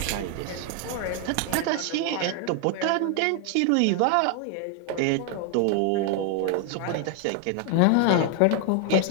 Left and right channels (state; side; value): different; both; correlation 0.00